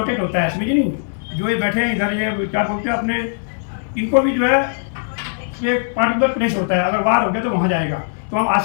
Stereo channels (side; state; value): right; silent; digital silence